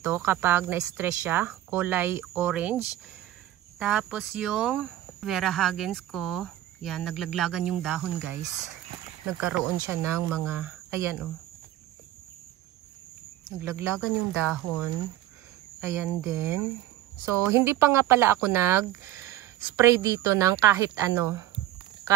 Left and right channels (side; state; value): left; quieter; 13.8 dB